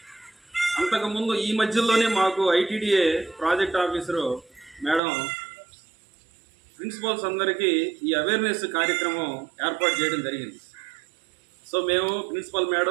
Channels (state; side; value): drops out; left; at 5.0 s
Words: అంతకుముందు ఈ మధ్యలోనే మాకు ITDA project officer madam principals అందరికీ ఈ అవేర్నెస్ కార్యక్రమం ఏర్పాటు చేయడం జరిగింది. సో మేము ప్రిన్సిపల్